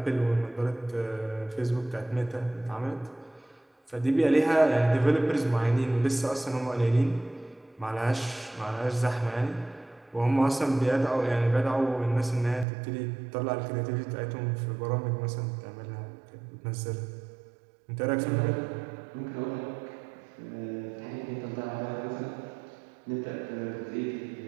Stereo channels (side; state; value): left; drops out; at 12.7 s